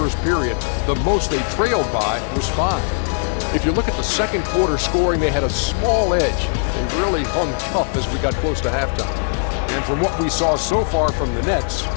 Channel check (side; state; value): right; silent; 62 dB below the other